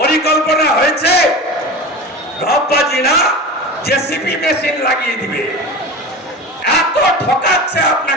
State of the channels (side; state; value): both; normal; correlation 0.30